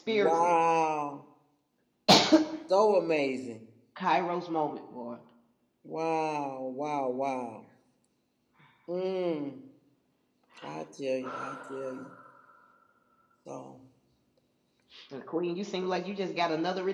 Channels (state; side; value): identical; both; correlation 1.00